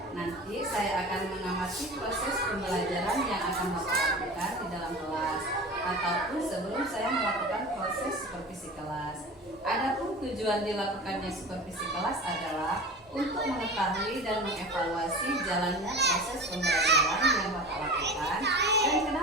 Nanti saya akan mengamati proses pembelajaran yang akan Bapak lakukan di dalam kelas, ataupun sebelum saya melakukan proses supervisi kelas. Adapun tujuan dilakukannya supervisi kelas adalah untuk mengetahui dan mengevaluasi jalannya proses pembelajaran yang Bapak lakukan. Dan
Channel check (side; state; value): both; normal; correlation 0.34